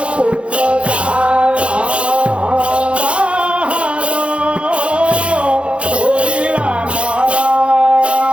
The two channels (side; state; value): left; late; 0.059 ms